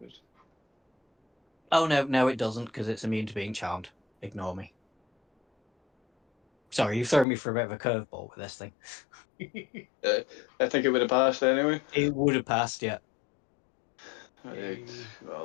Oh, no, it doesn't, because it's immune to being charmed. Ignore me. Sorry, you've thrown me for a bit of a curveball with this thing. I think it would have passed anyway. It would have passed, yeah. Right.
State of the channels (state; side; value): drops out; right; at 7.2 s